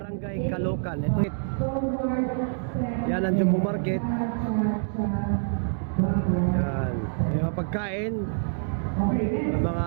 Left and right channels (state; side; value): silent; left; digital silence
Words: Caloocan. Ito. Yan ang Jumbo Market. Yan. Mga pagkain, mga